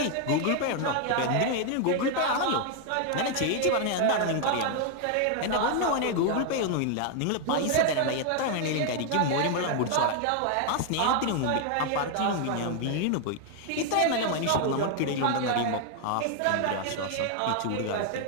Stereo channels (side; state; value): both; different; correlation 0.00